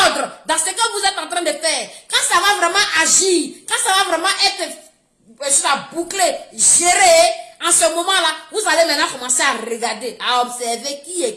dans ce que vous êtes en train de faire. Quand ça va vraiment agir, quand ça va vraiment être bouclé, géré, en ce moment-là, vous allez maintenant commencer à regarder, à observer qui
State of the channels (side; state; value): both; identical; correlation 1.00